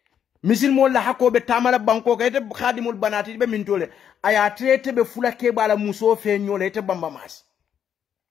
misil mol la hakobe tamala banko ka ite khadimul banati be min tole aya trete be fulake bala muso fe nyole ite bamba masi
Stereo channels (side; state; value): right; quieter; 8.7 dB